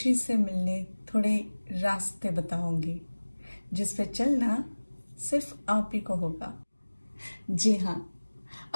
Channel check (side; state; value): both; inverted; correlation -1.00